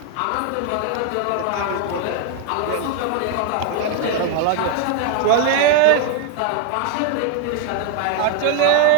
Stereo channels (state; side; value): different; both; correlation 0.01